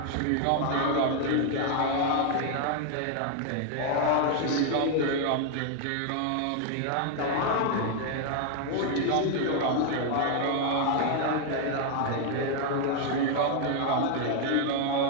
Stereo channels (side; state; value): both; different; correlation 0.00